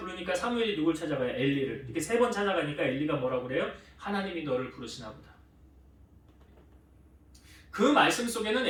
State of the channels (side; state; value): both; identical; correlation 1.00